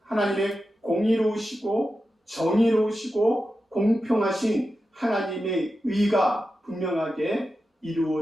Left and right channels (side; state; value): both; normal; correlation 0.91